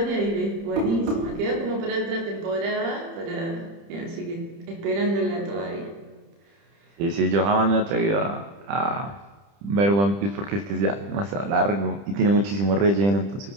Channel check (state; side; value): late; left; 30 ms